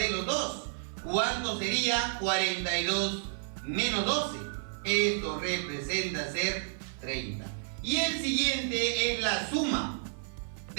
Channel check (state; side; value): silent; left; 57 dB below the other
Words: los dos. ¿Cuánto sería? 42 menos 12. Esto representa ser 30. Y el siguiente es la suma